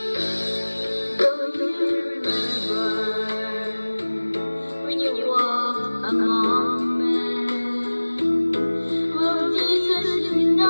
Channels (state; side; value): inverted; both; correlation -1.00